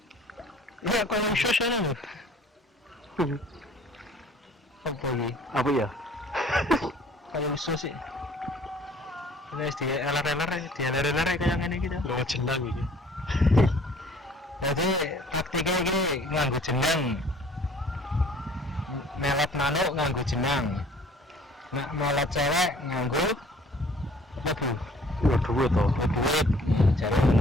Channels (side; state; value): both; normal; correlation 0.53